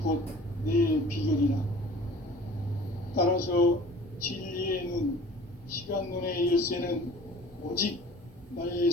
곧 내 비결이라. 따라서 진리의 눈, 시간론의 열쇠는 오직 나의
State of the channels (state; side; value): normal; both; correlation 0.46